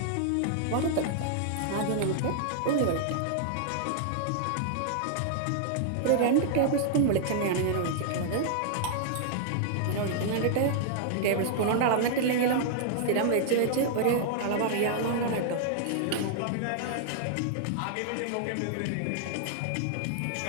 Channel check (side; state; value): both; different; correlation -0.01